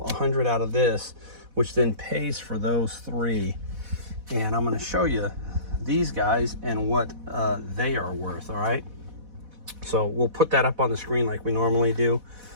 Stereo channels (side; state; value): left; late; 4.1 ms